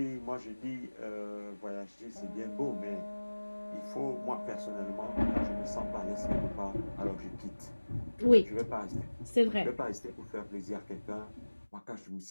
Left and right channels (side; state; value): both; inverted; correlation -1.00